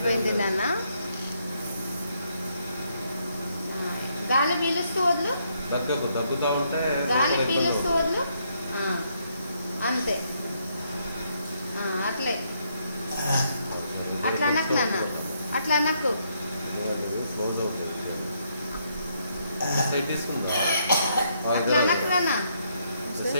నాన్న. గాలి పీలుస్తూ వదులు, దగ్గుతా ఉంటే గాలి పీలుస్తూ వదులు. అంతే, అట్లే అట్లా అనకు నాన్న, అట్లా అనకు. అట్లా అనకు నాన్న.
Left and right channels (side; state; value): both; inverted; correlation -0.74